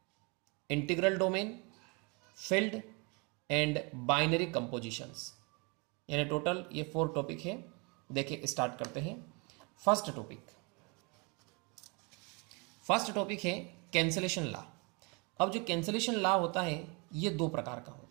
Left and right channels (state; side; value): quieter; left; 30.8 dB